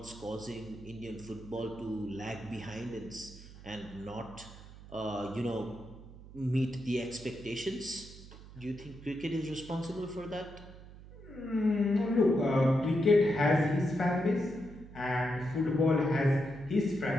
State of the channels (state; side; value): noise; right; hum, 17 dB below the sound